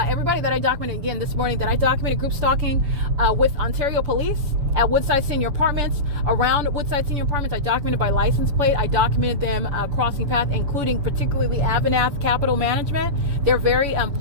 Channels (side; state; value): left; late; 7.0 ms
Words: everybody that I documented again this morning, that I documented group stalking with Ontario Police at Woodside Senior Apartments, around Woodside Senior Apartments. I documented by license plate. I documented them crossing path, including particularly Avanath Capital Management. They're